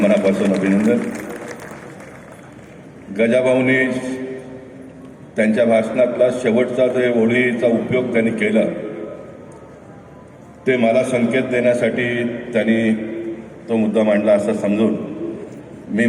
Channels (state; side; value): identical; both; correlation 1.00